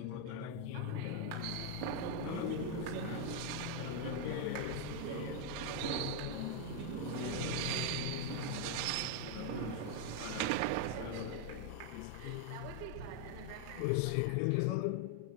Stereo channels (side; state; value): both; different; correlation 0.01